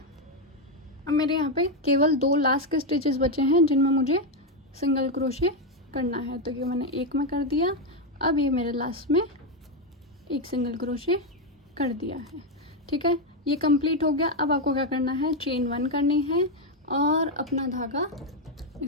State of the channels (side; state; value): both; normal; correlation 0.05